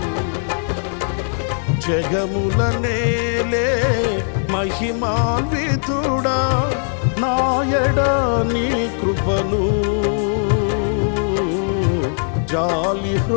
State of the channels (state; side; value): silent; right; 66 dB below the other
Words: జగముల నేలే మహిమాన్వితుడా నాయడ నీ కృపను జాలి